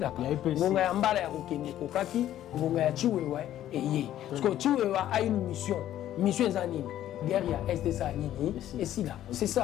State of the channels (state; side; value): quieter; right; 12.3 dB